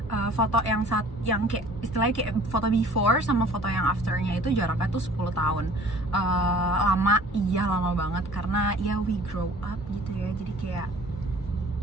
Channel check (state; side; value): normal; both; correlation 0.50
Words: foto yang kayak istilahnya kayak foto before sama foto yang afternya itu jaraknya tuh 10 tahun. Lama banget karena ya we grow up gitu ya, jadi kayak